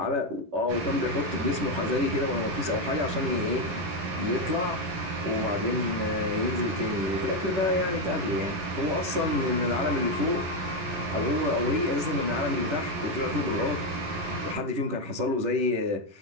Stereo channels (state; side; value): late; left; 11 ms